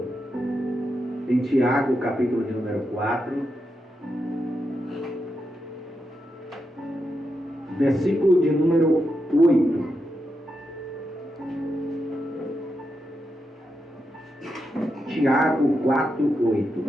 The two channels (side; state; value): both; normal; correlation 0.85